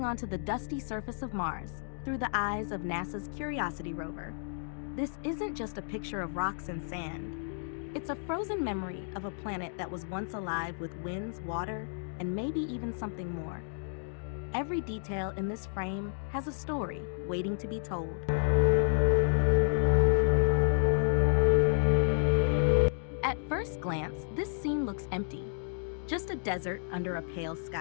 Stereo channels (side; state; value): right; silent; digital silence